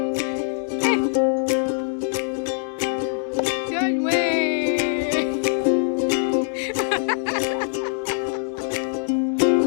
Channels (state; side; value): silent; right; digital silence